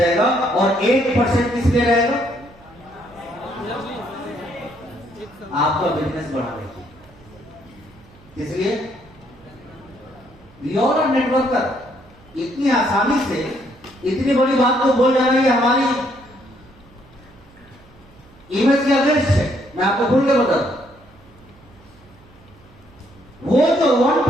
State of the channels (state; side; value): noise; right; hum, 26 dB below the sound